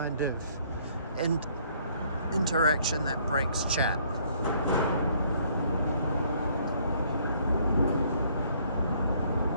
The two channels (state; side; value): inverted; both; correlation -0.64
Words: of interaction that breaks chat.